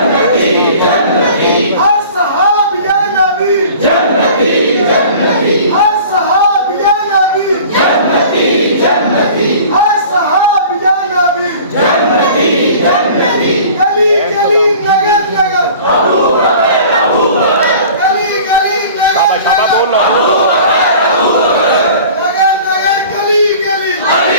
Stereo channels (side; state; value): both; inverted; correlation -0.44